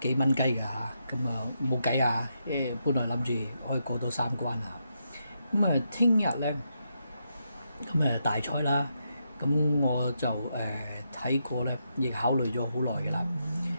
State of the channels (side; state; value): both; inverted; correlation -0.82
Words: 蚊雞㗎嚇。咁冇計啊，本來諗住可以過到3關啊。咁聽日咧，咁大賽啦，咁我就睇過咧，亦考慮咗好耐嘅啦。